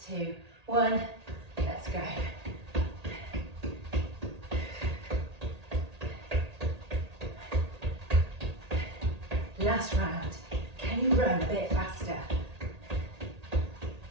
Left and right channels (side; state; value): left; late; 1.8 ms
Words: 2, 1. Let's go. Last round. Can you run a bit faster?